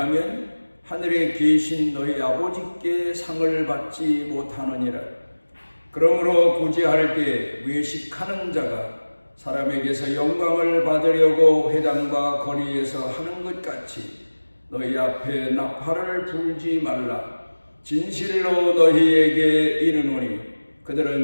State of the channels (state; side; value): inverted; both; correlation -1.00